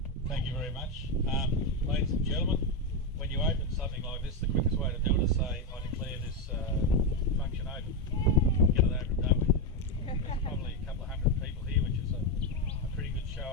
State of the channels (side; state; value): both; normal; correlation 0.08